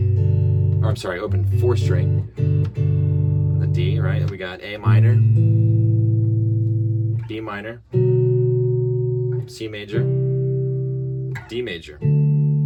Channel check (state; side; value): identical; both; correlation 1.00